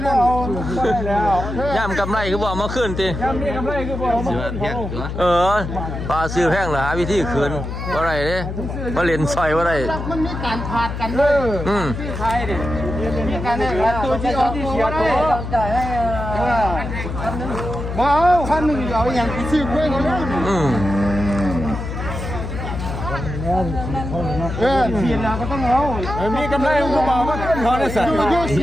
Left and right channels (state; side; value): noise; left; hum, 5 dB below the sound